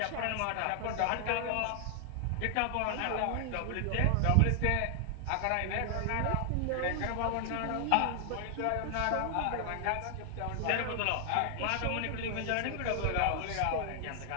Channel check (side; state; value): both; different; correlation 0.00